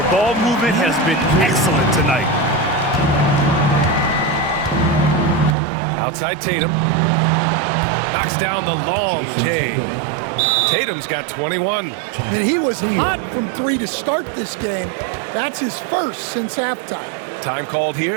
ball movement has been excellent tonight. Outside Tatum. Knocks down the long J. Tatum's got 21. And he was hot from three to start this game. That's his first since halftime. Time called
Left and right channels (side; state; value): left; drops out; at 5.6 s